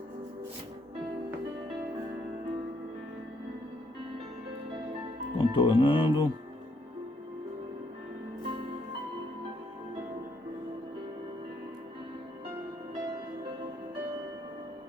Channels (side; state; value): both; normal; correlation 0.71